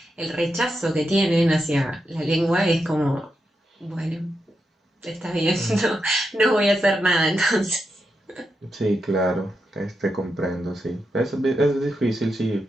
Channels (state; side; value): normal; both; correlation 0.86